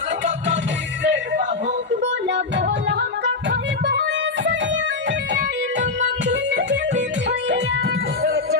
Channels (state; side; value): quieter; right; 3.8 dB